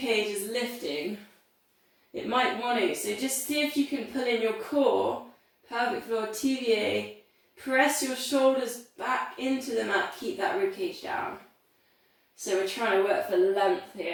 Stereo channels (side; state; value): both; identical; correlation 1.00